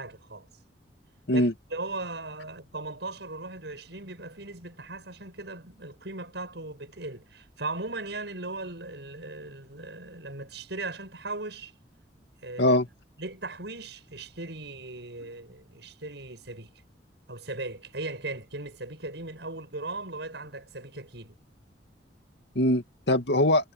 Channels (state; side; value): normal; both; correlation -0.01